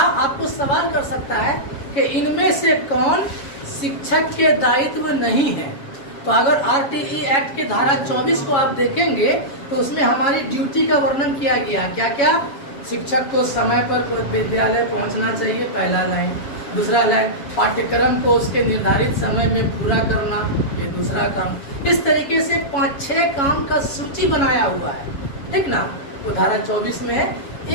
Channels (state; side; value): late; right; 7.2 ms